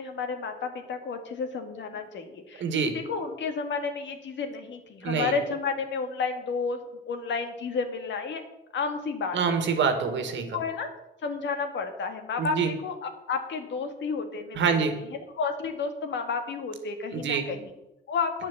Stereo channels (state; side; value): normal; both; correlation 0.11